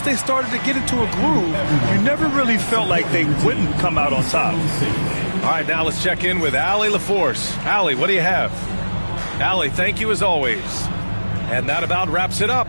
they started to get into a groove, you never really felt like they wouldn't come out on top. All right, now let's check in with Allie LaForce. Allie, what do you have? Allie, thank you as always. And that about wraps it up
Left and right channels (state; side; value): inverted; both; correlation -1.00